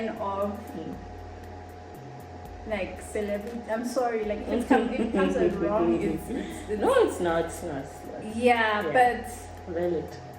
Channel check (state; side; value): identical; both; correlation 1.00